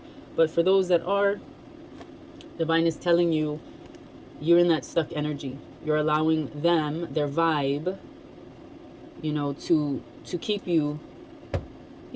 But for those that are, Divine is telling you, you're in that stuck energy. You're allowing them, their vibe, you know, to keep you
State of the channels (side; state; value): both; identical; correlation 1.00